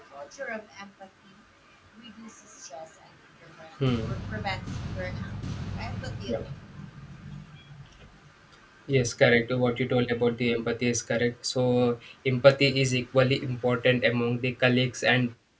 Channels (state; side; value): identical; both; correlation 1.00